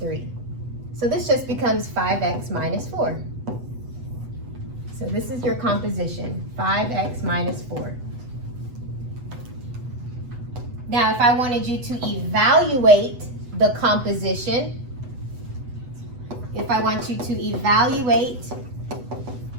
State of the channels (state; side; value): late; left; 8.1 ms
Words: So this just becomes 5x minus 4. So this is your composition, 5x minus 4. Now, if I wanted you to evaluate the composition,